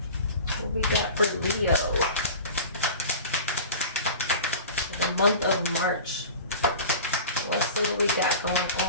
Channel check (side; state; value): both; inverted; correlation -0.36